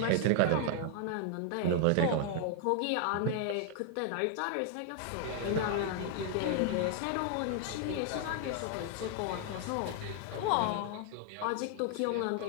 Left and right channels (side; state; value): both; different; correlation 0.00